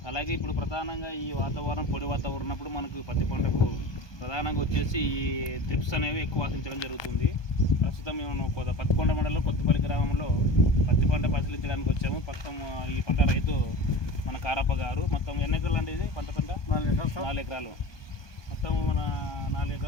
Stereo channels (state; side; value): late; right; 1.2 ms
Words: అలాగే ఇప్పుడు ప్రధానంగా ఈ వాతావరణం పొడి వాతావరణం ఉన్నప్పుడు మనకు పత్తి పంటకు ప్రధానంగా వచ్చేసి ఈ త్రిప్స్ అనేవి ఎక్కువ ఆశించడం జరుగుతుంది. ప్రస్తుతం మేము పత్తికొండ మండలంలో కొత్తపల్లి గ్రామంలో పత్తి పంట పరిశీలించడానికి వచ్చాము. ప్రస్తుతం ఈ పంట రైతు మన కారప్ప గారు. మొత్తం ఎన్ని ఎకరాలు అంటే ఇది పంట 4 ఎకరాలు. మొత్తం మన 4